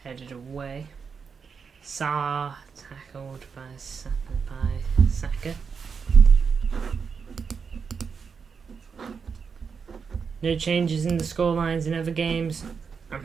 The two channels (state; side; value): quieter; left; 5.9 dB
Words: Headed away. Saar tackled by Saka. No changes in the scorelines in other games. I'm